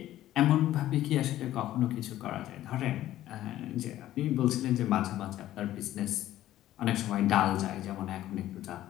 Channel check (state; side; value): quieter; right; 13.7 dB